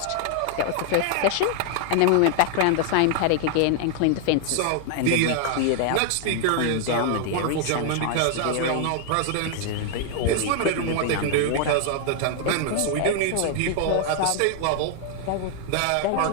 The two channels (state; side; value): different; both; correlation 0.00